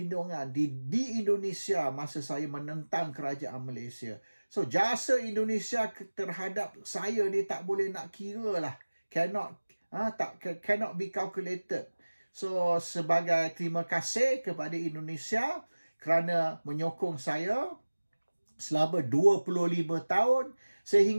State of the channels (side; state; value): both; inverted; correlation -1.00